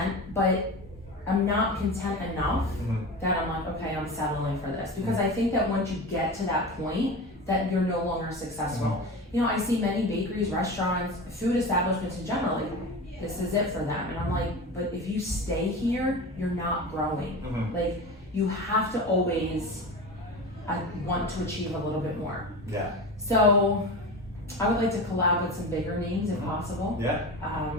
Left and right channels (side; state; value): both; normal; correlation 0.29